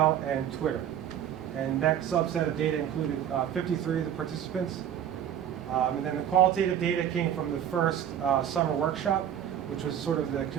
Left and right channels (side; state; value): left; quieter; 10.0 dB